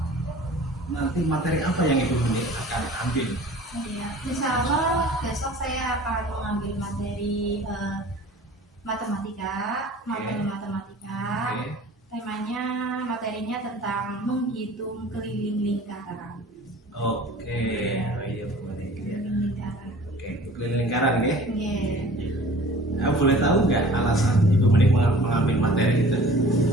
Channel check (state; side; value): normal; both; correlation 0.46